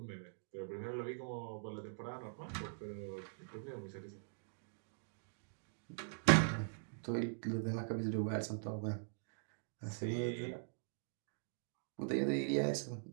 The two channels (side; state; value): left; silent; digital silence